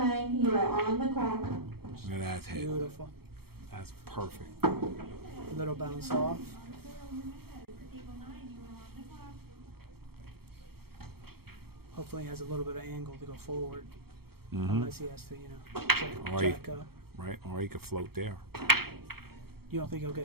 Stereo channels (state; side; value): late; left; 0.95 ms